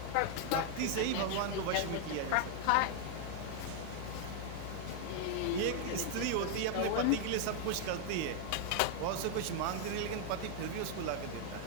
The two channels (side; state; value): both; different; correlation 0.00